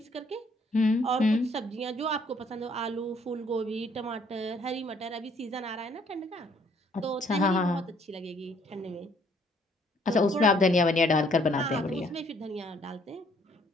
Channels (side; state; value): both; normal; correlation 0.64